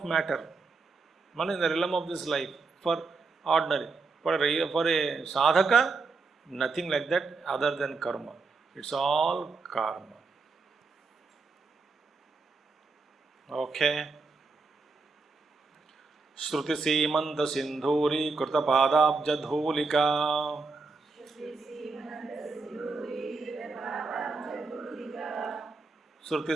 matter, not in the realm of this life, for ordinary. For a sadhaka, nothing like that other than karma. It's all karma. Okay. Shruti Simanta Sindhuri Krita Padabja Dhulika. Shruti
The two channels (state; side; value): quieter; left; 4.2 dB